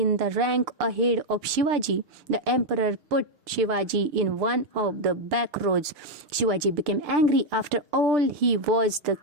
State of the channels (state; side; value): late; left; 6.7 ms